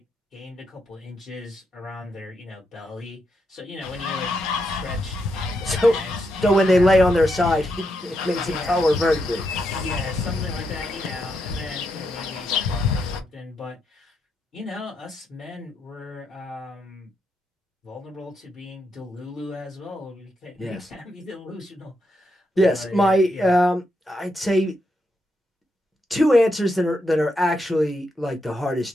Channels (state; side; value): normal; both; correlation 0.82